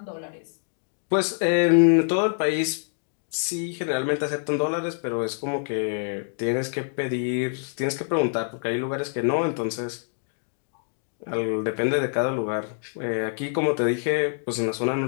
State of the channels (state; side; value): silent; right; 61 dB below the other